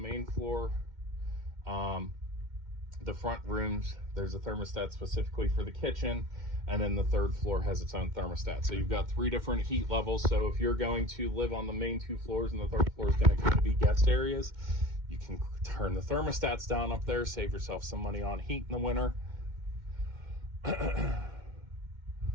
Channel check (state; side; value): late; left; 2.1 ms